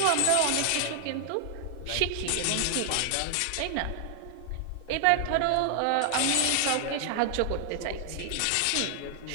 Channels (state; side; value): different; both; correlation 0.00